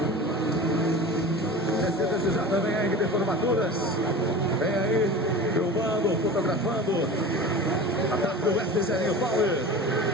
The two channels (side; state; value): both; normal; correlation 0.34